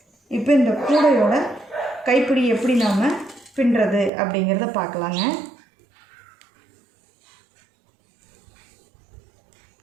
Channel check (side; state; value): left; drops out; at 4.1 s